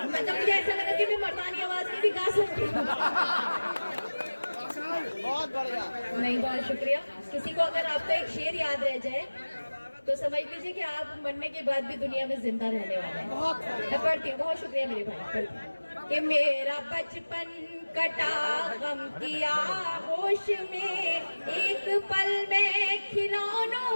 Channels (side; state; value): both; inverted; correlation -1.00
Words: मतलब मुझे ऐसा लगा कि मैं मर्दानी आवाज में भी गा सकती हूँ। बहुत बढ़िया। नहीं, बहुत शुक्रिया। किसी को अगर आपका एक शेर याद रह जाए तो समझ लीजिए कि आप मरने के बाद भी दुनिया में जिंदा रहने वाले हैं। मैं पढ़ती हूँ, बहुत शुक्रिया मेरे भाई। पढ़ती हूँ कि मेरा बचपन कटा गम की आगोश में, एक पल में